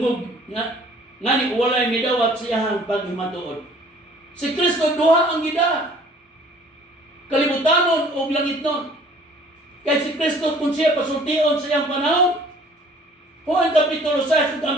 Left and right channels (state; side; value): normal; both; correlation 0.54